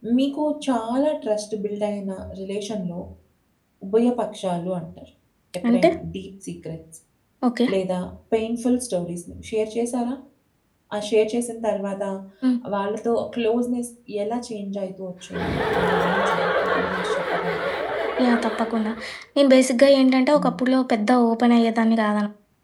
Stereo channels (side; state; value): both; identical; correlation 1.00